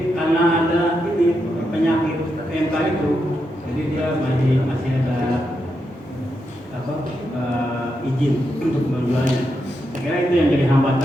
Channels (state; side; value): normal; both; correlation 0.84